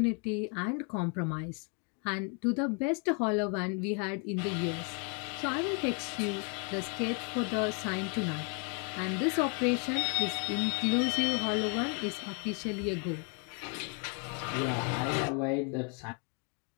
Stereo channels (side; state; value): right; quieter; 36.8 dB